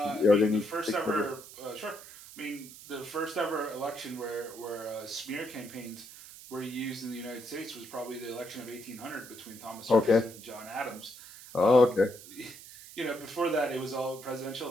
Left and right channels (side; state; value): right; noise; hiss, 16 dB below the sound